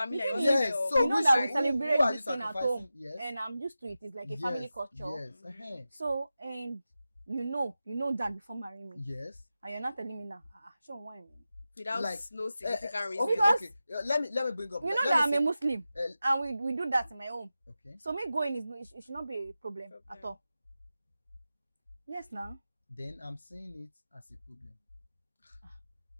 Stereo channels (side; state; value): both; inverted; correlation -0.93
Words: The and thing your Yes, your- so you know which that are- we who celebrate are you this thing at sacrificing? home, Yes. and I'm used to it. It's like a family culture. Yes. Uh-huh. So, and you know that before marrying me, Yes. and you're not telling me now. Show why me. without Like, no significant reason. Okay, Because- okay. Let me bring up. You know let that I'm me a say- Muslim, and we do that in my home. Okay. So me going it should not be a problem at all. Yes, now Then I'm seeing it as a problem.